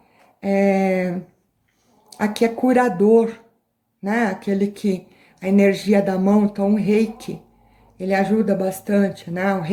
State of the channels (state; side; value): identical; both; correlation 1.00